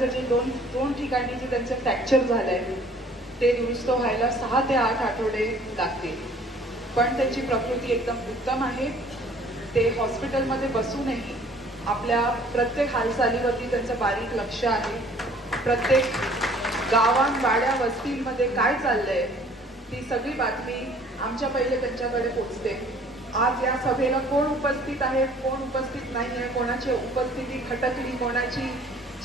जे दोन ठिकाणी जे त्यांचं फ्रॅक्चर झालंय ते दुरुस्त व्हायला 6 ते 8 आठवडे लागतील, पण त्यांची प्रकृती एकदम उत्तम आहे। ते हॉस्पिटलमध्ये बसूनही आपल्या प्रत्येक हालचालीवरती त्यांचं बारीक लक्ष आहे। प्रत्येक गावात वाड्या वस्तींमध्ये काय चाललंय ती सगळी बातमी आमच्या पहिले त्यांच्याकडे पोहोचते। आज या सभेला कोण उपस्थित आहे कोण उपस्थित नाही आहे, कोणाची उपस्थिती खटकली, कोणाची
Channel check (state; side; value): normal; both; correlation 0.54